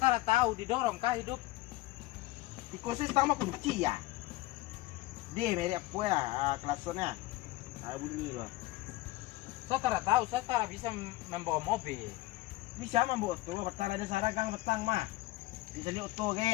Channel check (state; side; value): quieter; right; 19.2 dB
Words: tahu didorong kah hidup. Di kursi sama kunci ya. Dia meri apa ya kelasnya? Saya bunyi loh. Saya tidak tahu, saya tidak bisa membawa mobil. Di siapa membawa oto? Betang ada saragang betang mah. Di sini oto